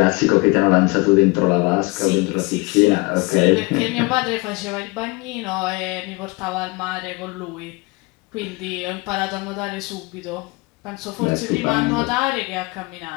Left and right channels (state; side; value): quieter; right; 26.0 dB